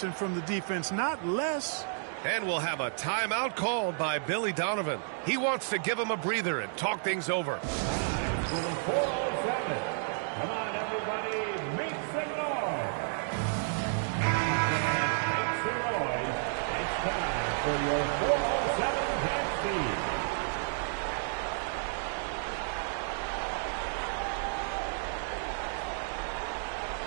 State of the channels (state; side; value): silent; left; digital silence